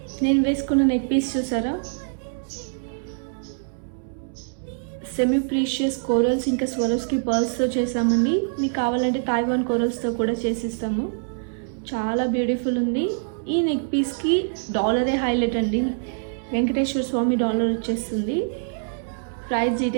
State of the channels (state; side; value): silent; left; 62 dB below the other